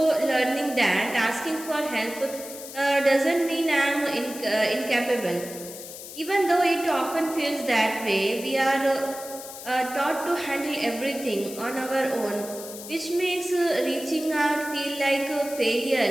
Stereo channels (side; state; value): left; noise; hiss, 12 dB below the sound